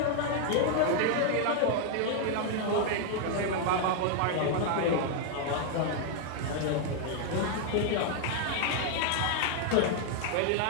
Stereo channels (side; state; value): both; different; correlation 0.00